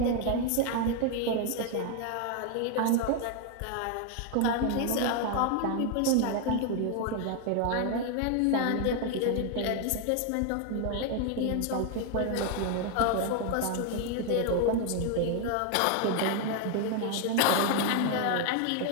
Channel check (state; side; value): different; both; correlation 0.01